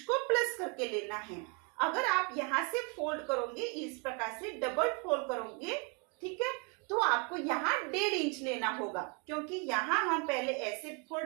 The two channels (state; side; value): quieter; left; 34.3 dB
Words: को प्लस करके लेना है। अगर आप यहाँ से फोल्ड करोगे, इस प्रकार से डबल फोल्ड करोगे, ठीक है, तो आपको यहाँ 1.5 इंच लेना होगा, क्योंकि यहाँ हम पहले ऐसे